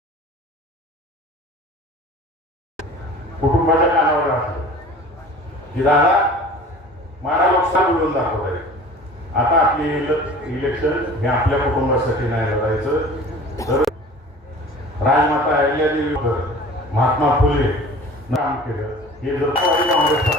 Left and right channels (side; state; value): both; normal; correlation 0.43